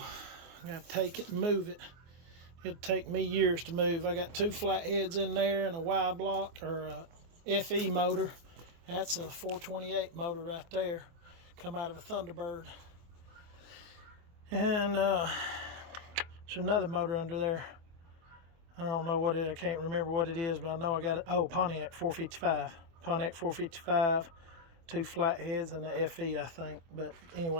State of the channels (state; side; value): late; left; 24 ms